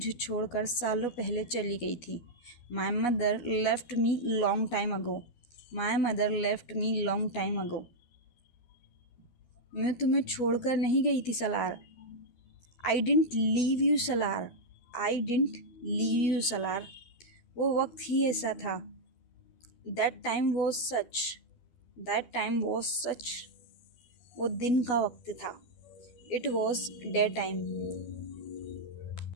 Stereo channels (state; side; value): late; right; 12 ms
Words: छोड़कर सालों पहले चली गई थी। My mother left me long time ago. My mother left me long time ago. मैं तुम्हें छोड़कर नहीं गई थी Salaar. I didn't leave you Salaar. I didn't leave you Salaar. वो वक्त ही ऐसा था। That time was such. That time was such. वो दिन का वक्त था। It was day time.